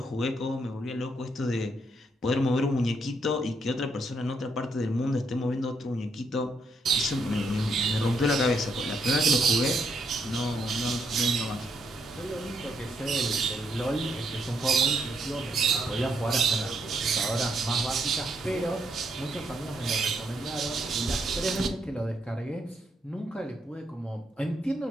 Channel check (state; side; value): normal; both; correlation 0.75